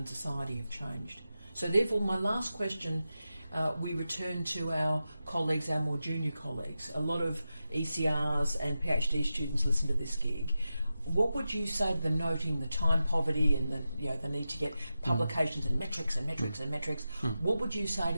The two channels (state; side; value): inverted; both; correlation -0.91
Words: society have changed. So therefore, my last question, we return to our colleagues, our more junior colleagues. A lot of ECRs and PhD students listen to this gig. what would you say to them, noting the time poverty and the need to get publications and metrics and metrics and metrics? What would you say